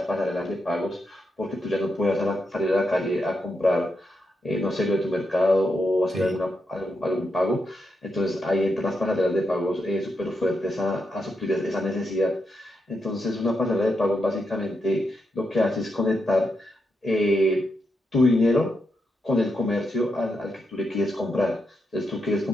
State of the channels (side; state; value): both; normal; correlation 0.83